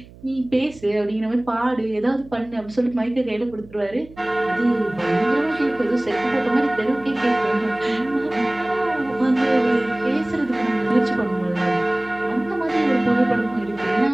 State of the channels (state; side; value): noise; right; hum, 21 dB below the sound